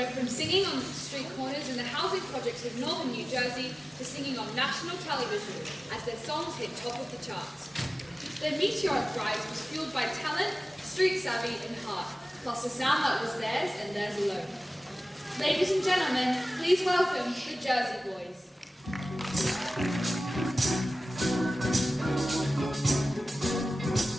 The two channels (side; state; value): both; normal; correlation 0.97